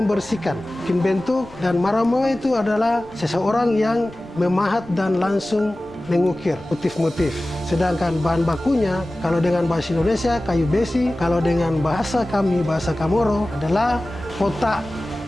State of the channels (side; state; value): left; noise; rumble, 24 dB below the sound